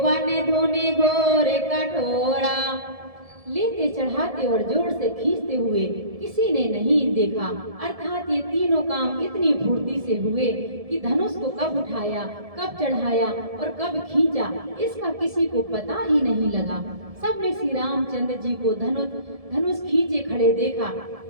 धुनि घोर कठोरा। लेते चढ़ाते और जोर से खींचते हुए किसी ने नहीं देखा, अर्थात ये तीनों काम इतनी फुर्ती से हुए कि धनुष को कब उठाया, कब चढ़ाया और कब खींचा इसका किसी को पता ही नहीं लगा। सबने श्री रामचंद्र जी को धनुष खींचे खड़े देखा।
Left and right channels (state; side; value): late; left; 1.7 ms